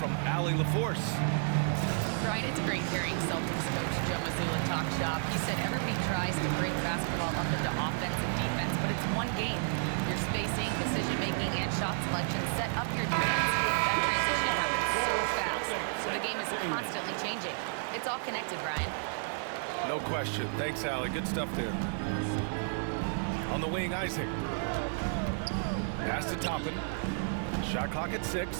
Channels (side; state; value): left; silent; 57 dB below the other